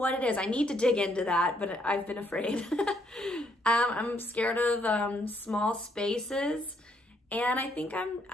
it is. I need to dig into that, but I've been afraid. I'm scared of small spaces, and I think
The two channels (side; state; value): both; normal; correlation 0.71